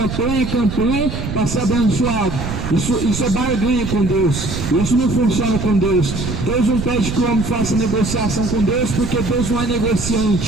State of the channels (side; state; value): right; noise; rumble, 6 dB below the sound